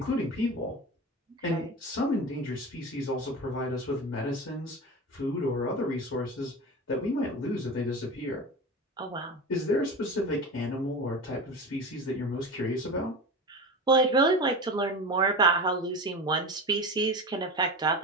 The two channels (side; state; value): both; normal; correlation 0.27